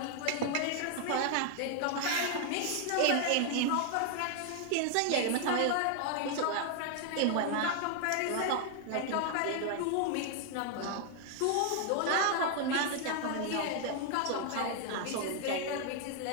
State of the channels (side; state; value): both; different; correlation 0.00